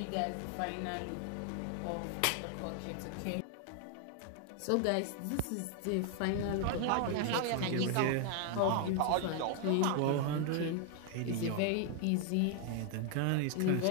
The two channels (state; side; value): different; both; correlation 0.00